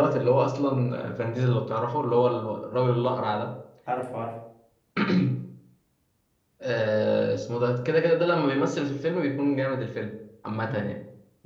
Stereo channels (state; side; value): identical; both; correlation 1.00